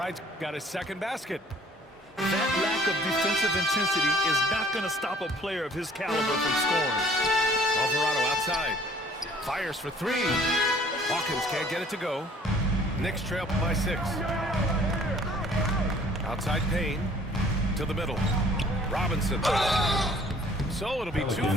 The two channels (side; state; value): both; normal; correlation 0.56